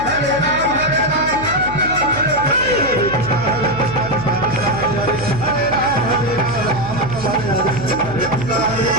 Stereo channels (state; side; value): noise; right; hum, 11 dB below the sound